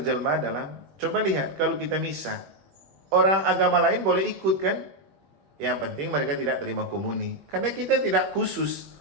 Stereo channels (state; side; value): late; left; 21 ms